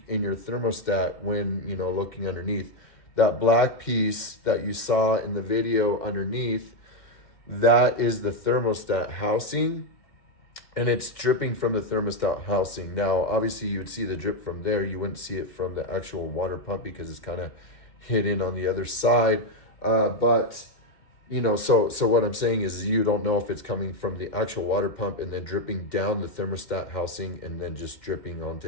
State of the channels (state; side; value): late; right; 2.1 ms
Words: in your thermostat when, you know, looking underneath. That black piece that you saw in the video underneath, that is the thermostat housing, and it's dripping from the thermostat housing. Now, obviously you would see the drip from there. You wouldn't see it from the actual water pump because it's kind of hidden on the other side. But, you know, so what I'm saying is you don't know if it's coming from the actual water pump and then dripping down the thermostat housing and then just dripping